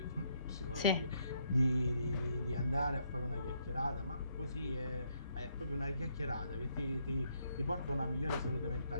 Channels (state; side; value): inverted; both; correlation -0.74